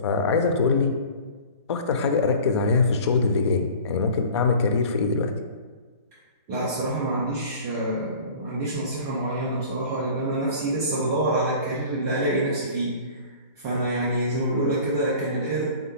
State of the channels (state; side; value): inverted; both; correlation -0.43